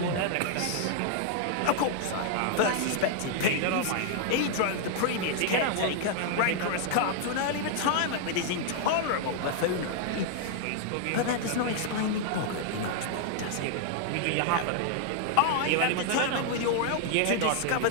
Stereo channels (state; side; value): different; both; correlation 0.00